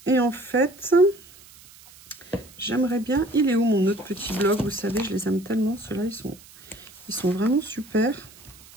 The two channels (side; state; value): right; noise; hiss, 23 dB below the sound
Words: Et en fait... J'aimerais bien... Il est où mon autre petit bloc? Vous savez, je les aime tellement. Ceux-là, ils sont vraiment super.